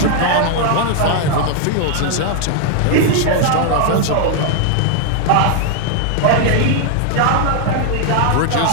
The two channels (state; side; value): different; both; correlation 0.00